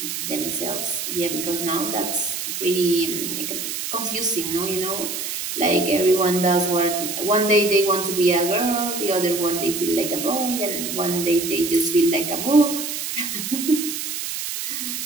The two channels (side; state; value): right; noise; hiss, 4 dB below the sound